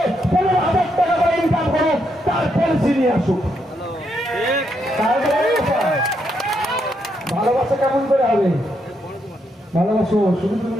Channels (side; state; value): both; normal; correlation 0.78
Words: 15,000 টাকা করে ইনকাম করুক, তার পলিসি নিয়ে আসুক। ভালোবাসা কেমন করে হবে? ভালোবাসো শুধু তুমি